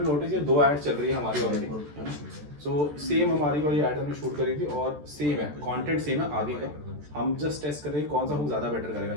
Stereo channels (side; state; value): left; late; 14 ms